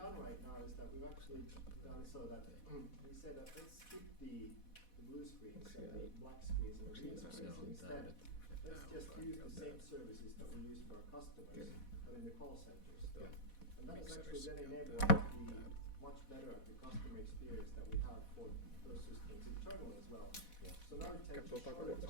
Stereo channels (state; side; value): late; right; 4.1 ms